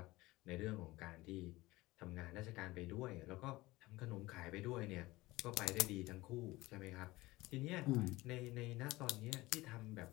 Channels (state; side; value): quieter; right; 19.7 dB